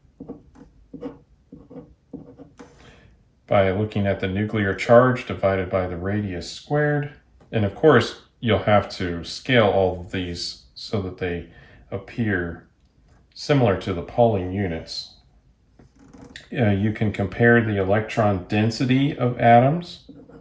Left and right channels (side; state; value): both; identical; correlation 1.00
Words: by looking at the nuclear charge divided by the radius squared. And of course, you'll have to scale all of these so that they appear similar to the Pauling units. You can compare the electron density of atoms.